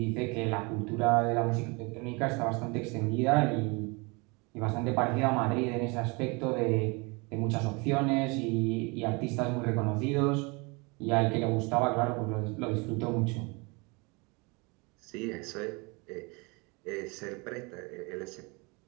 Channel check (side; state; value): left; quieter; 28.6 dB